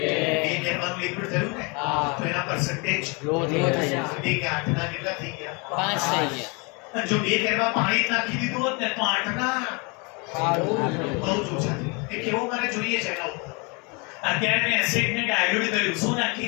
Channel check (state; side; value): quieter; right; 30.7 dB